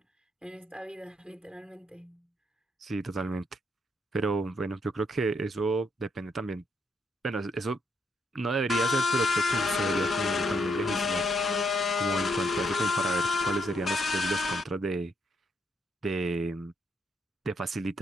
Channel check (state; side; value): normal; both; correlation 0.75